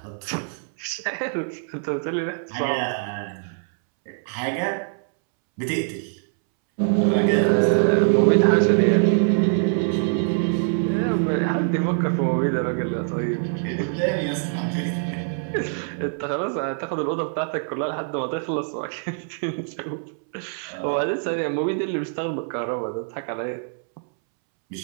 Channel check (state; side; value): silent; left; 63 dB below the other